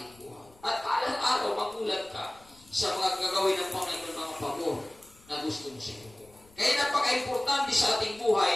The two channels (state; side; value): noise; left; rumble, 27 dB below the sound